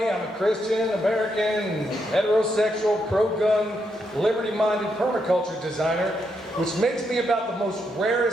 I'm a Christian, American, heterosexual, pro-gun, liberty-minded permaculture designer, which makes me about the most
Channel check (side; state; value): both; normal; correlation 0.80